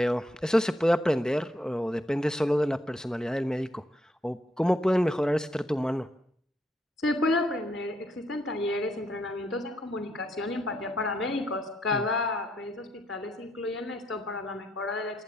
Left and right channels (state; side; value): normal; both; correlation 0.76